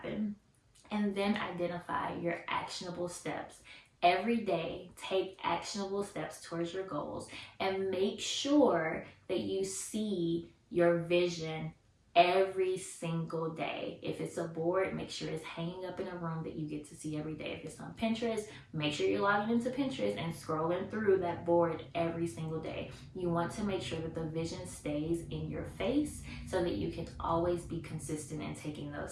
And then identify your actionable steps. Every day, take actionable steps towards your goals and make sure that you see your vision every single day. If it's a board, make sure it's hanging up in a room that you get to see every day. If it's on Pinterest, make sure you're logging into Pinterest and scrolling through that board every single day. You want to make sure that the vision stays in your face so that you can always be consistent in taking those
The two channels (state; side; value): identical; both; correlation 1.00